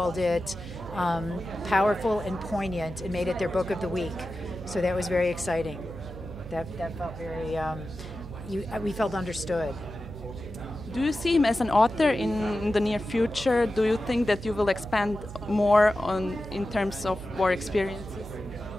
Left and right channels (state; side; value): noise; right; hum, 12 dB below the sound